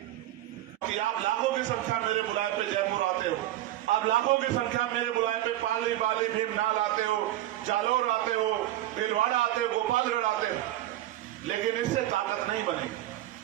आप लाखों की संख्या मेरे बुलाए पे जयपुर आते हो, आप लाखों की संख्या मेरे बुलाए पे पाली, बाली, भीमनाल आते हो, जालौर आते हो, भीलवाड़ा आते हो, गोपालगढ़ आते हो, लेकिन इससे ताकत नहीं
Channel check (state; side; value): quieter; left; 14.4 dB